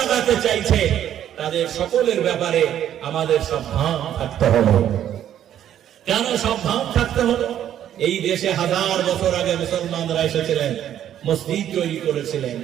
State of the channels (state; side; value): quieter; left; 10.7 dB